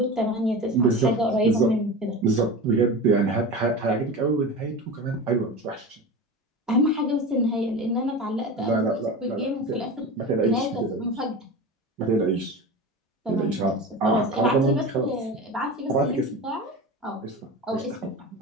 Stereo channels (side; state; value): both; normal; correlation 0.29